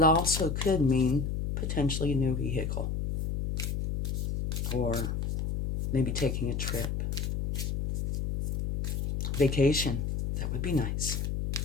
also could mean potentially a new vehicle, or maybe taking a trip. Vacation, that would be nice.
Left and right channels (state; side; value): noise; left; hum, 1 dB below the sound